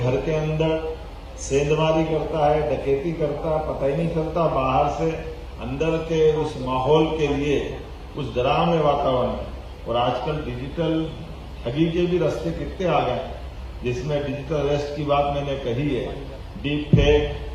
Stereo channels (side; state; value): both; identical; correlation 1.00